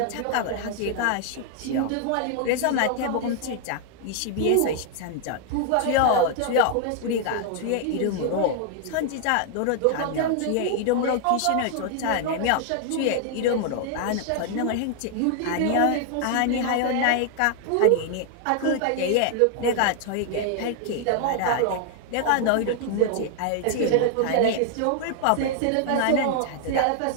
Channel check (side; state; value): both; different; correlation 0.00